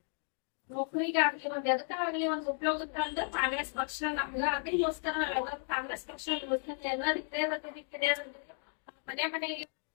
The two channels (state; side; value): silent; right; 55 dB below the other